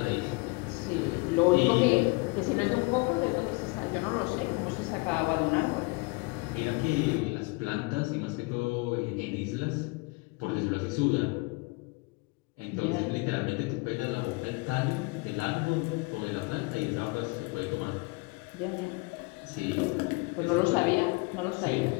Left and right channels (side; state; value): right; quieter; 27.1 dB